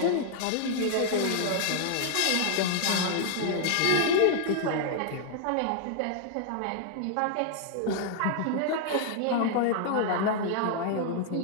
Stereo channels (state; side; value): different; both; correlation 0.00